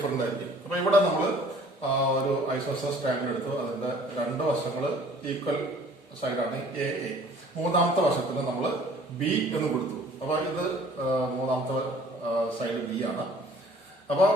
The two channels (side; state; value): both; normal; correlation 0.53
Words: ആയിരിക്കും. അപ്പൊ ഇവിടെ നമ്മൾ ഒരു ഐസോസെലസ് ട്രയാങ്കിൾ എടുത്തു, അതിന്റെ 2 വശങ്ങൾ ഈക്വൽ സൈഡാണ് എ എ. 3ാമത്തെ വശത്തിന് നമ്മൾ ബി എന്ന് കൊടുത്തു. അപ്പൊ ഇത് 3ാമത്തെ സൈഡ് ബി ആണ്. അപ്പൊ